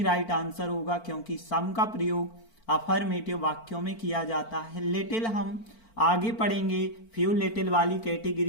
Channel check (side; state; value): right; late; 4.5 ms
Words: राइट आंसर होगा, क्योंकि सम का प्रयोग अफर्मेटिव वाक्यों में किया जाता है। लिटिल हम आगे पढ़ेंगे, फ्यू लिटिल वाली